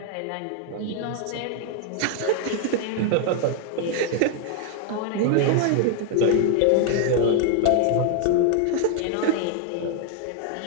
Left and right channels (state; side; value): different; both; correlation 0.00